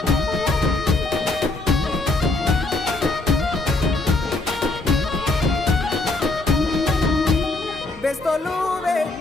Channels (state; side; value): quieter; right; 3.0 dB